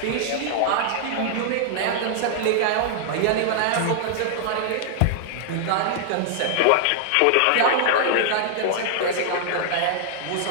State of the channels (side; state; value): both; different; correlation -0.01